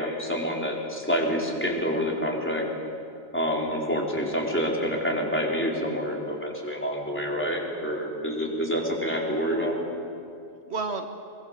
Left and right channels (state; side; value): normal; both; correlation 0.03